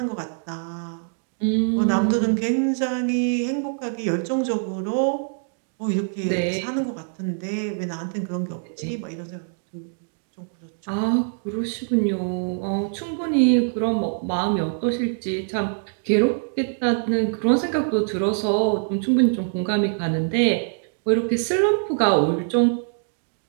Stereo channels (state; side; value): silent; left; digital silence